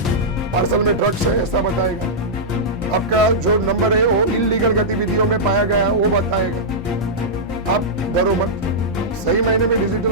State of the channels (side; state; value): both; normal; correlation -0.11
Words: पार्सल में ड्रग्स है ऐसा बताएगा, आपका जो नंबर है वो इलीगल गतिविधियों में पाया गया वो बताएगा, आप डरो मत। सही मायने में